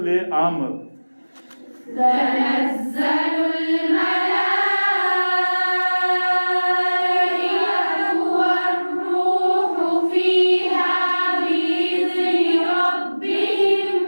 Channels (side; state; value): both; inverted; correlation -1.00